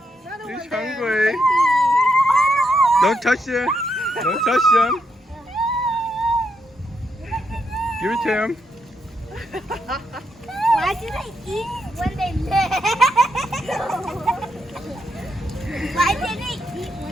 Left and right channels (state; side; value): normal; both; correlation 0.80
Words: He's hungry. Don't touch him. Don't touch him. Give it to him. Why do they eat when they live? Why do they eat